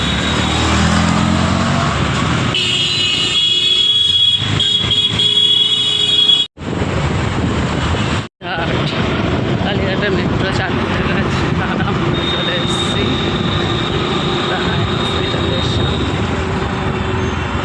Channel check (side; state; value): both; identical; correlation 1.00